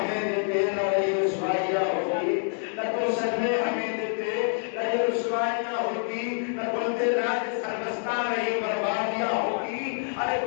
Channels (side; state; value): right; silent; 60 dB below the other